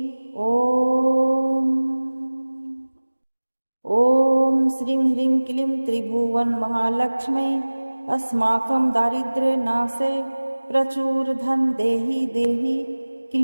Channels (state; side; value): inverted; both; correlation -1.00